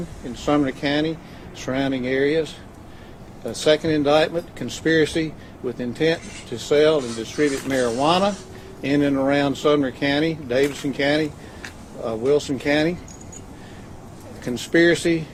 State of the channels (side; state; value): both; identical; correlation 1.00